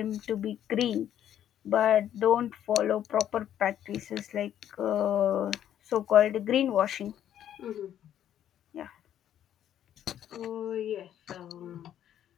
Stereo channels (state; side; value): quieter; right; 10.6 dB